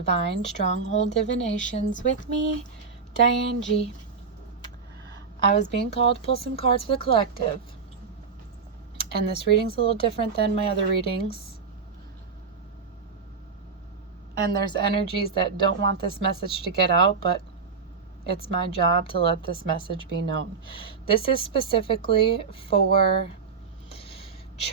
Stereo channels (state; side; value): quieter; left; 5.4 dB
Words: Stronghold Divinations, with me, Diane G. I was being called to pull some cards for the collective, and this reading's a little different than my other readings. And there's energies that don't want this message to get out, but it's my job to let this message be known. This is specifically for